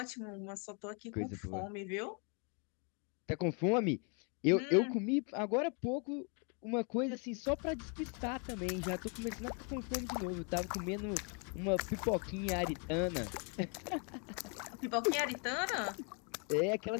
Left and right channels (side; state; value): right; quieter; 37.5 dB